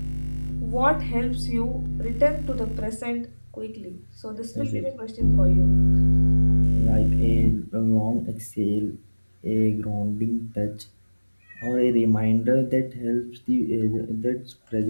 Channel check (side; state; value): both; inverted; correlation -1.00